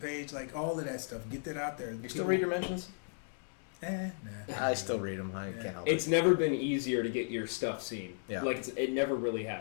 like all of that stuff. Get that out there. You still read your mentions? Nah. I still read them. I can't help it. It's never been easier to get your stuff seen. Yeah. Like it never really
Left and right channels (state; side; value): silent; right; 54 dB below the other